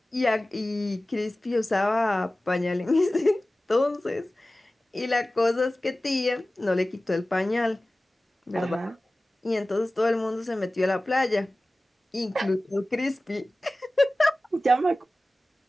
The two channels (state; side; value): normal; both; correlation 0.97